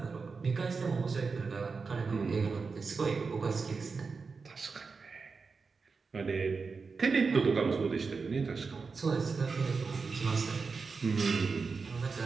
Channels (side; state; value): left; quieter; 4.8 dB